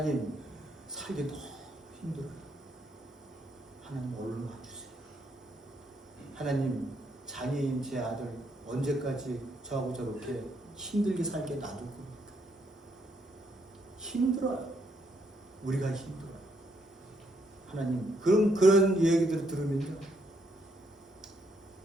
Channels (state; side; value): normal; both; correlation 0.74